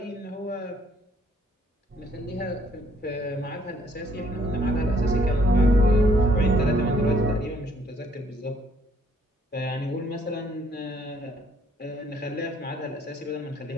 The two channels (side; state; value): both; normal; correlation 0.66